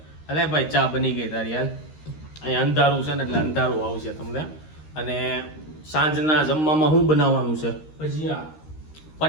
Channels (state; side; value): late; right; 13 ms